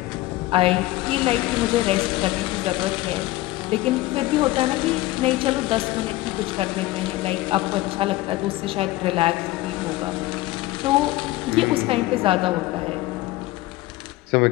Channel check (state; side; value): quieter; right; 17.9 dB